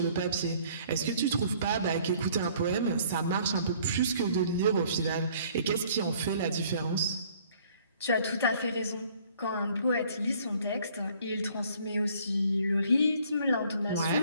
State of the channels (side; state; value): both; inverted; correlation -0.58